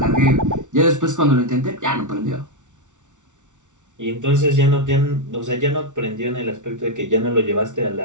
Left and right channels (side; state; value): left; late; 0.86 ms